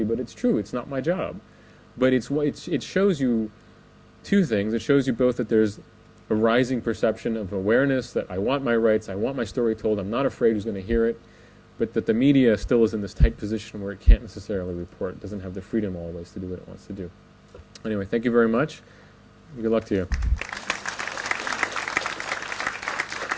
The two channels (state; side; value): identical; both; correlation 1.00